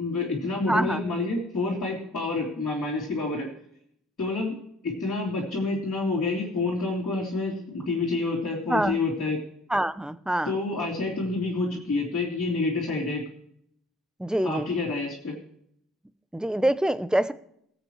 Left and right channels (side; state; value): both; normal; correlation 0.58